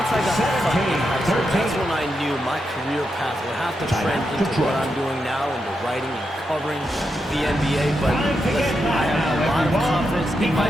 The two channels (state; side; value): normal; both; correlation 0.85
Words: I got cut in high school, that's when I knew my career path would have to trend into what I'm doing now, into writing and covering the NBA. But listen, I have a lot of confidence in my